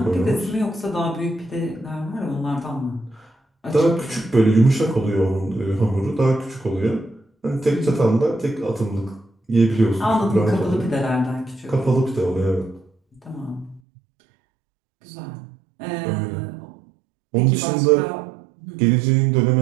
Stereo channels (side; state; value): left; drops out; at 13.8 s